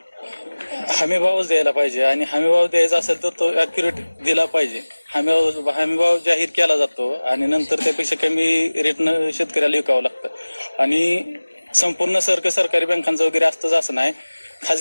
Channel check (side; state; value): both; inverted; correlation -1.00